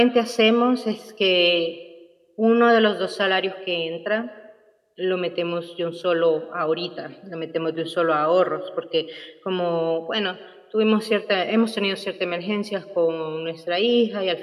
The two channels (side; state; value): both; identical; correlation 1.00